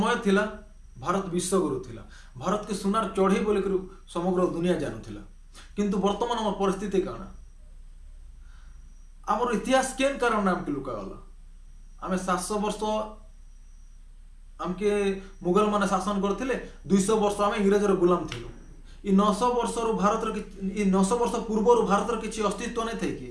थिला भारत विश्वगुरु थिला, भारत के सुनार चढ़े बोल समग्र दुनिया जानूला। किंतु वर्तमान आम परिस्थिति कण, आमर इतिहास केन कारण आमके लुकागला। आम 700 वर्ष आमके मुगल माने शासन करथिले, 200 वर्ष आम इंग्रेजर गुलाम थिलु। इ 900 वर्ष भारत 900 वर्ष पूर्व भारत किसी अस्तित्व नहीं थे कि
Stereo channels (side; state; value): both; identical; correlation 1.00